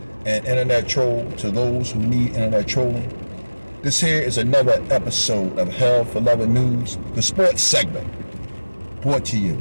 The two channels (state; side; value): inverted; both; correlation -1.00